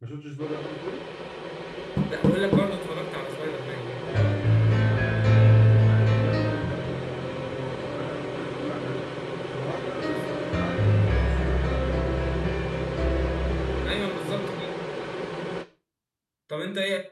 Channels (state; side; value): identical; both; correlation 1.00